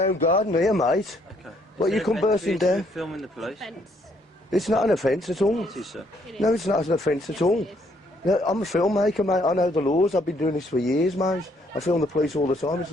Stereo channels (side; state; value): both; normal; correlation 0.69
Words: garden here, mate. Okay. What, you come bursting down? Filming the police? It's not an offence at all. It is, sir. No, it's not an offence at all. No, I'm a filmmaker, mate. I know the laws. I've been doing this for years, mate. I film the police all the time. It's